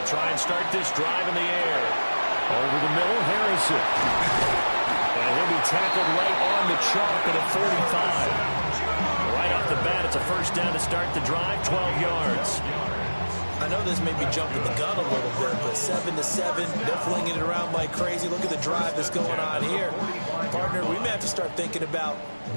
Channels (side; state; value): both; inverted; correlation -1.00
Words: try and start this drive in the air. Over the middle, Harrison. And he'll be tackled right on the chalk at a 45. Right up off the bat. It's a first down to start the drive, 12 yards. I know this may be jumping the gun a little bit, but 7-7, they're flinging it around like crazy. Look at the drive that's going on here. Partner, we may have to start thinking about